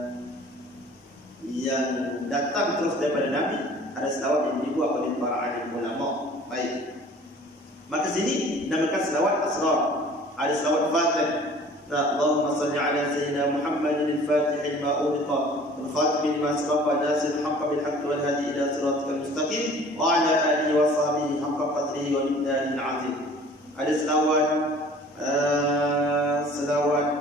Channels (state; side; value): normal; both; correlation 0.49